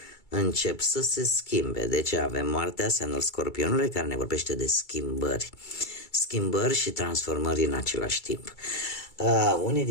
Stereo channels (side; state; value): right; late; 2.3 ms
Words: încep să se schimbe. Deci avem moartea, semnul Scorpionului, care ne vorbește de schimbări și transformări în același timp. Unii